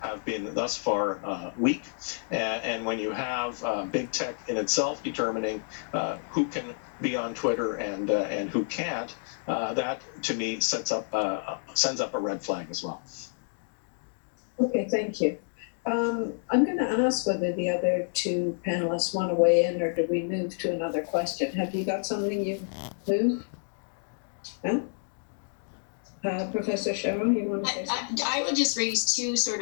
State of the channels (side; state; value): right; silent; digital silence